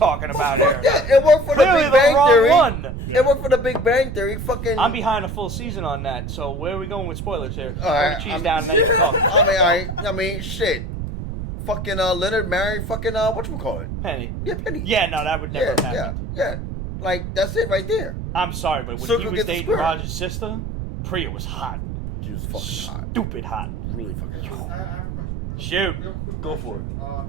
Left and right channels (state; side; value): noise; right; rumble, 6 dB below the sound